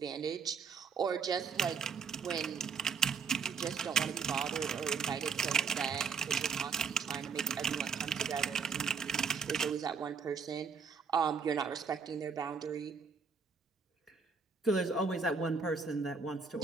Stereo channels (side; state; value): left; quieter; 5.6 dB